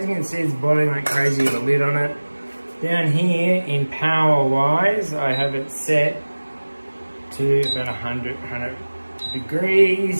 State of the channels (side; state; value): both; inverted; correlation -1.00